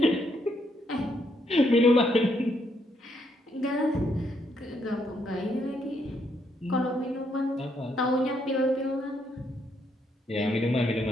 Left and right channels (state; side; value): normal; both; correlation 0.75